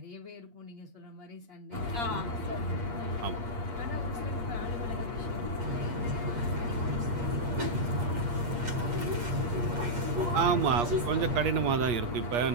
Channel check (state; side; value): late; left; 8.5 ms